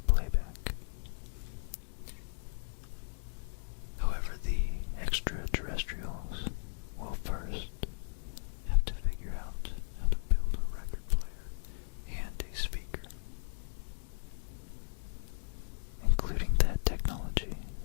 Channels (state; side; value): silent; right; digital silence